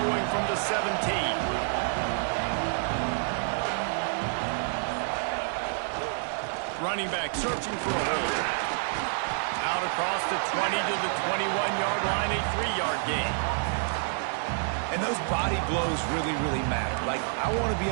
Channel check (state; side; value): silent; left; 59 dB below the other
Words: from the 17. Running back searching for a hole. Out across the 20 to the 21-yard line, a 3-yard gain. And those body blows really, really matter. Like, I want to